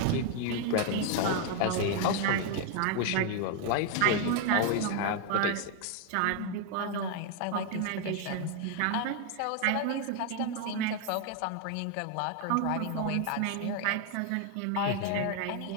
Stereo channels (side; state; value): both; different; correlation 0.01